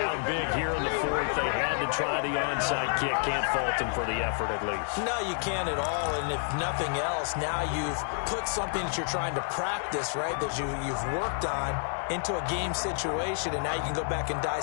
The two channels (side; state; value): right; silent; 57 dB below the other